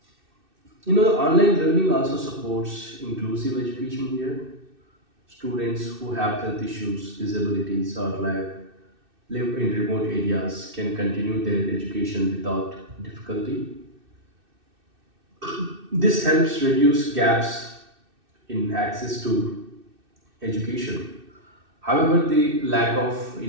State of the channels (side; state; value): left; late; 2.6 ms